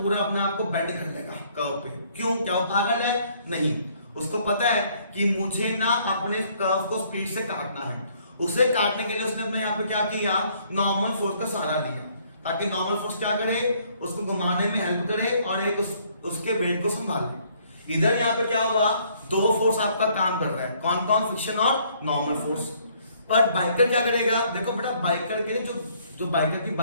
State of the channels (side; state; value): both; inverted; correlation -0.64